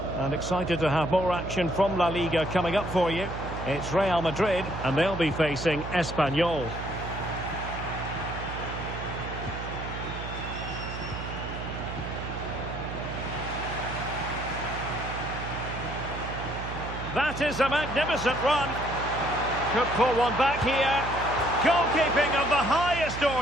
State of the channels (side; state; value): right; noise; hum, 8 dB below the sound